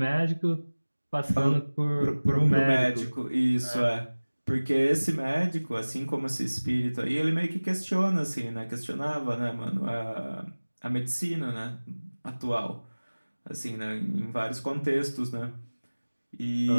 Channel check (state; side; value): inverted; both; correlation -1.00